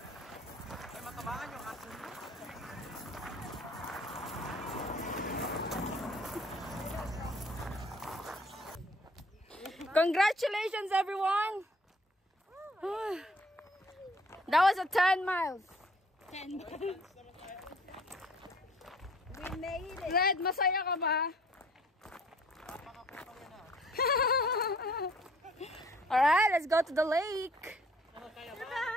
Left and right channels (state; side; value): normal; both; correlation 0.56